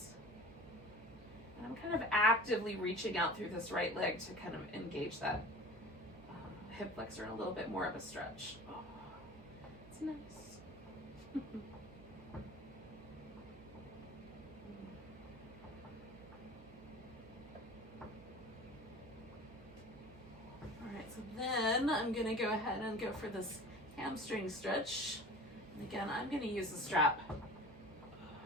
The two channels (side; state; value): right; noise; hum, 18 dB below the sound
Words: And I'm kind of actively reaching out through this right leg to kind of engage that hip flexor in a little bit more of a stretch. Oh, it's nice. So then I'm going to go ahead and go for this hamstring stretch. And again, I'm going to use the strap